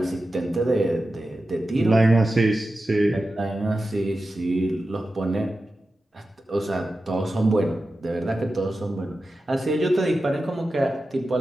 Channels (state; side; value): normal; both; correlation 0.93